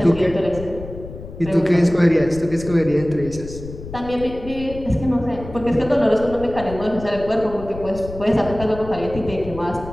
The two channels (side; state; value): left; noise; rumble, 13 dB below the sound